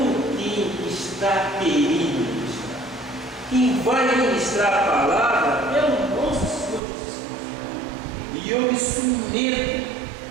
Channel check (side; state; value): left; drops out; at 6.8 s